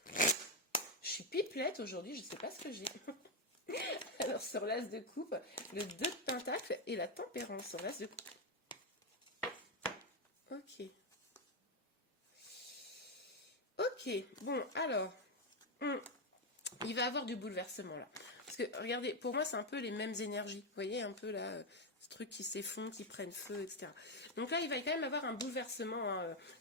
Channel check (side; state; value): both; normal; correlation 0.06